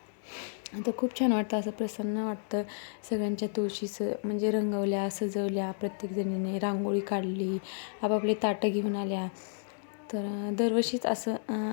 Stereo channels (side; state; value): right; silent; digital silence